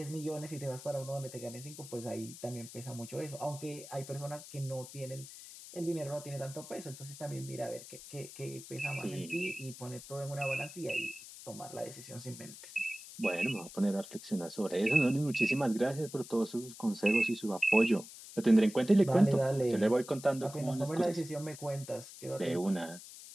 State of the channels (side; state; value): left; noise; hiss, 15 dB below the sound